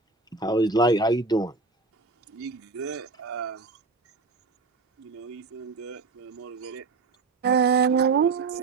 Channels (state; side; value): quieter; left; 4.0 dB